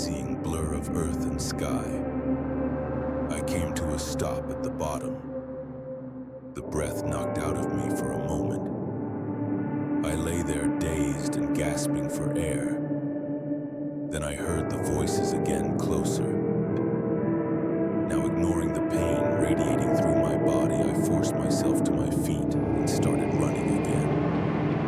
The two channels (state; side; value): identical; both; correlation 1.00